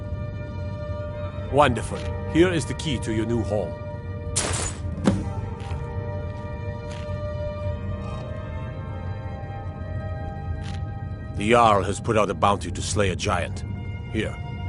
Wonderful. Here is the key to your new home. The Jarl has put out a bounty to slay a giant. Here,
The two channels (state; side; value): identical; both; correlation 1.00